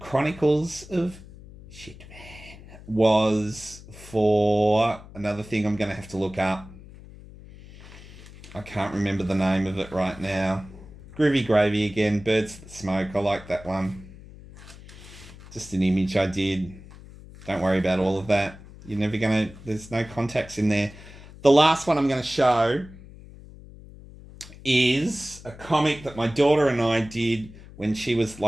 of Shit Man was for another thing I'm going to have to look up. I can't remember the name of it right now. Groovy Gravy again. Birds That Smoke. I like that one. Just an image I did. Don't worry about all of that. You're never going to... There's no contacts in there. The last one I'm going to show is a comic that my daughter and I did when she was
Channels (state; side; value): noise; left; hum, 18 dB below the sound